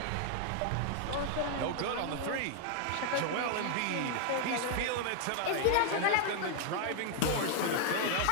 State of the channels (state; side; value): different; both; correlation 0.00